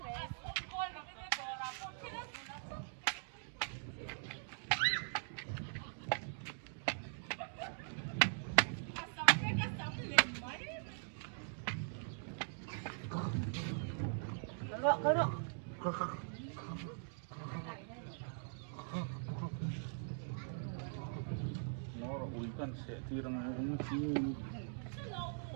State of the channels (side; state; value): left; silent; digital silence